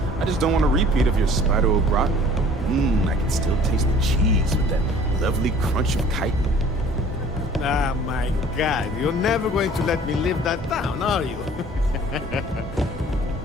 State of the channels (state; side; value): normal; both; correlation 0.51